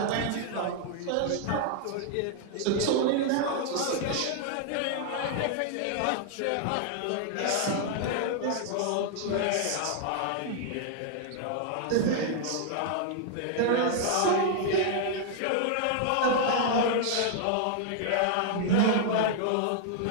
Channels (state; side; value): different; both; correlation 0.00